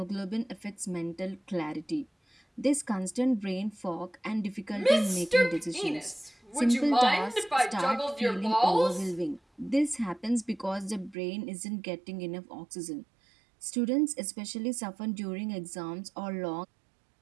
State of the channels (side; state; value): left; drops out; at 11.2 s